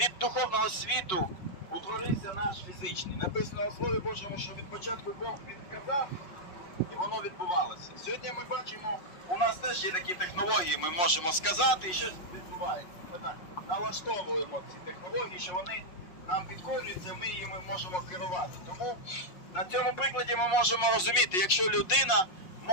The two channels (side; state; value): right; late; 5.5 ms